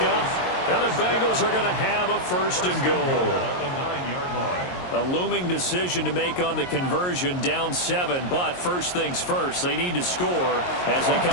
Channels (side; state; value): right; late; 22 ms